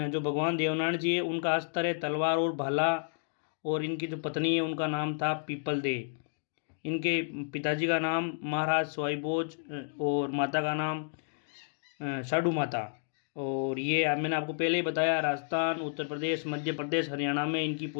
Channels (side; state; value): right; silent; digital silence